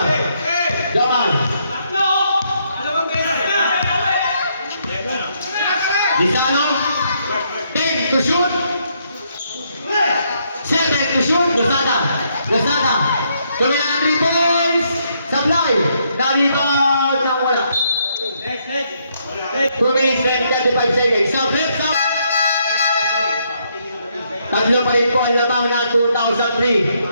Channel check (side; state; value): both; inverted; correlation -0.74